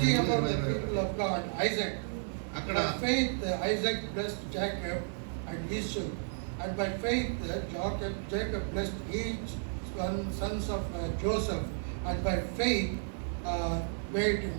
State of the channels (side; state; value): left; silent; digital silence